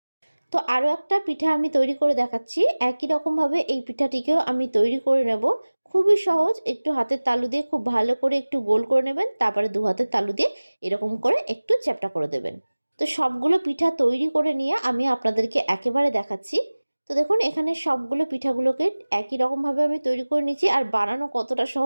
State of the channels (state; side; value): inverted; both; correlation -1.00